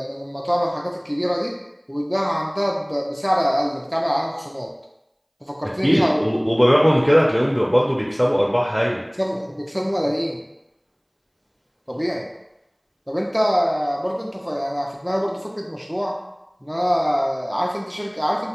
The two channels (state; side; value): identical; both; correlation 1.00